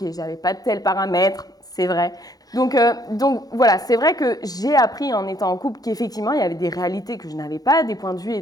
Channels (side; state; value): right; late; 0.18 ms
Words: j'avais pas de tel paramètre, c'est vrai. Donc voilà, c'est vrai que j'ai appris en étant en couple qu'effectivement, il y avait des réalités que je n'avais pas, des points de vue,